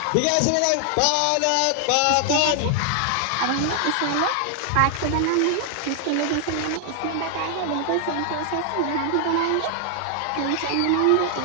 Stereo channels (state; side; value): different; both; correlation 0.00